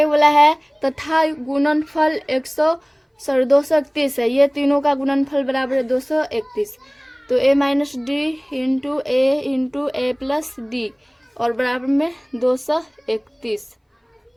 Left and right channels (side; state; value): both; identical; correlation 1.00